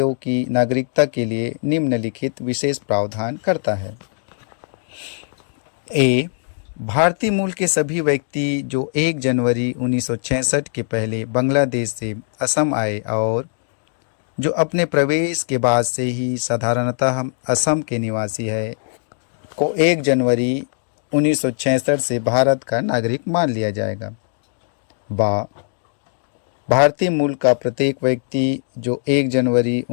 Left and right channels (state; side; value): silent; right; digital silence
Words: की नागरिकता के लिए निम्नलिखित विशेष प्रावधान करता है। ए भारतीय मूल के सभी व्यक्ति जो 1 जनवरी 1966 के पहले बांग्लादेश से असम आए और जो अपने प्रवेश के बाद से ही साधारणतः असम के निवासी है को 1 जनवरी 1966 से भारत का नागरिक मान लिया जाएगा। बा भारतीय मूल का प्रत्येक व्यक्ति जो 1 जनवरी